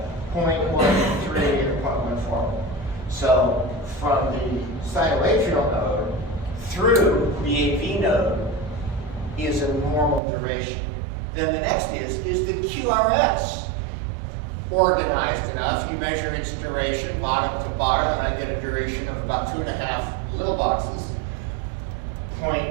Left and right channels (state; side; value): drops out; left; at 10.2 s